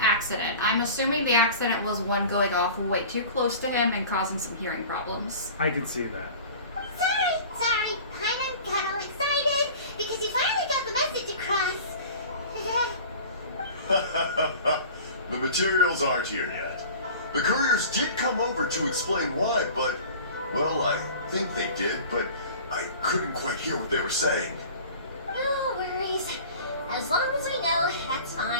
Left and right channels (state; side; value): inverted; both; correlation -0.41